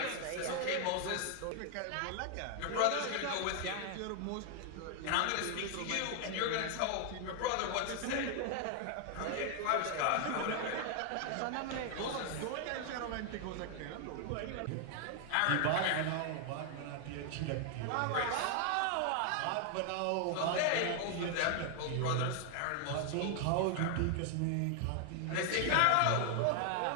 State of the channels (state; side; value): different; both; correlation 0.00